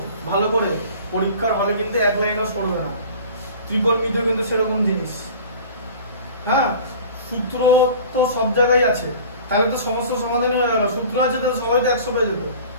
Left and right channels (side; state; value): both; inverted; correlation -0.42